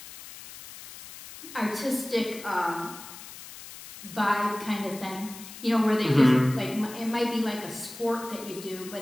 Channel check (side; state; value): left; noise; hiss, 15 dB below the sound